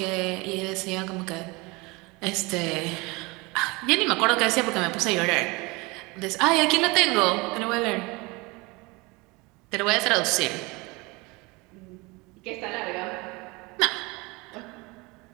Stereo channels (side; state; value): left; quieter; 25.3 dB